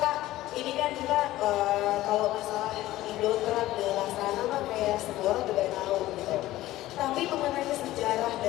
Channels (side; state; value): right; quieter; 15.9 dB